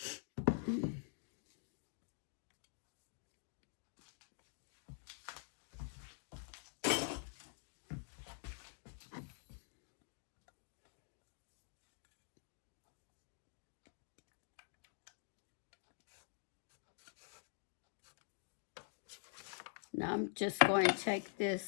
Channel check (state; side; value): silent; right; digital silence